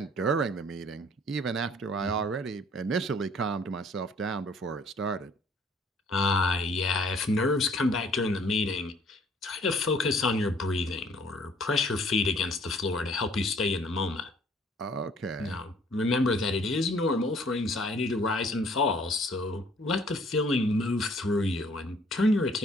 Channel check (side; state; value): both; normal; correlation 0.58